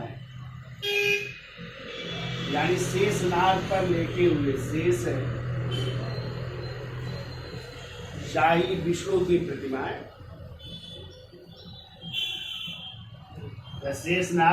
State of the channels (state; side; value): identical; both; correlation 1.00